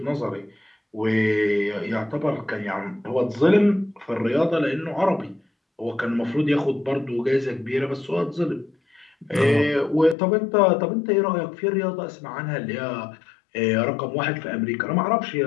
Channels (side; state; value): right; drops out; at 10.2 s